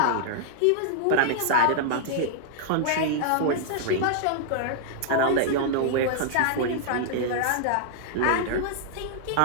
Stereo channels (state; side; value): different; both; correlation -0.01